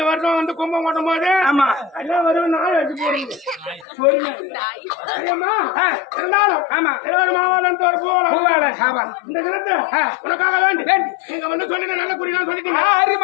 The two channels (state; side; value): drops out; right; at 3.9 s